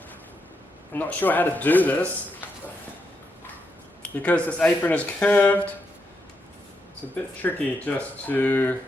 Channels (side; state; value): both; normal; correlation 0.82